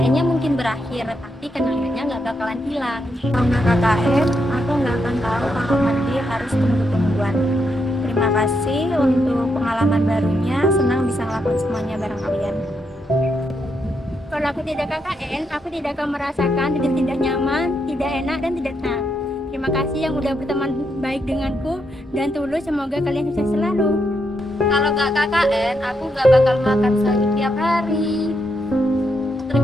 mungkin berakhir, tapi kenangannya gak bakalan hilang. Kalau nggak KKN, aku nggak akan tahu kalau mandi harus tunggu-tungguan. Terima kasih untuk pengalaman barunya, senang bisa ngelakuin semuanya bareng kalian. Kalau aku tidak KKN, aku tidak akan merasakan tidak nyaman, tidak enak, dan tidak tenang. Terima kasih yang udah berteman baik denganku, dan tulus semoga kalian sukses selalu. Kalau nggak KKN, aku nggak bakal makan sayur tiap hari.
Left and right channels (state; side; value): normal; both; correlation 0.80